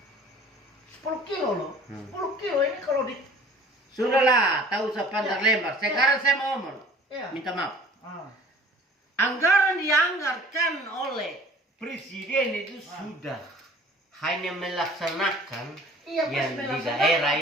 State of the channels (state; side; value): normal; both; correlation 0.48